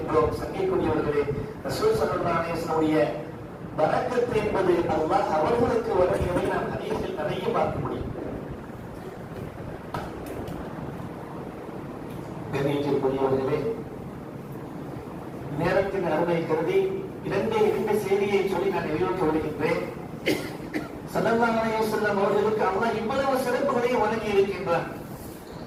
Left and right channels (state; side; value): identical; both; correlation 1.00